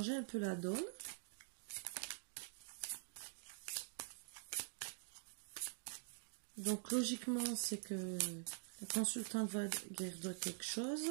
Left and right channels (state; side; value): silent; left; digital silence